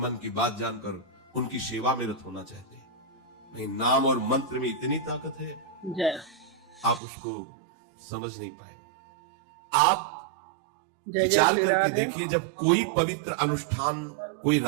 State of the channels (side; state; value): left; drops out; at 7.0 s